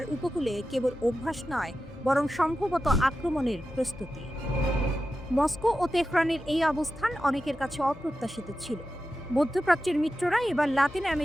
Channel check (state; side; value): normal; both; correlation 0.92